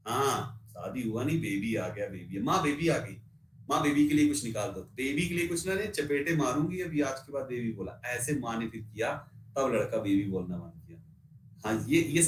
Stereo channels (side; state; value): both; identical; correlation 1.00